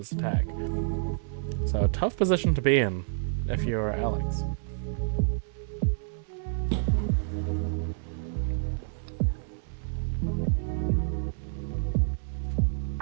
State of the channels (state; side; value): silent; left; 57 dB below the other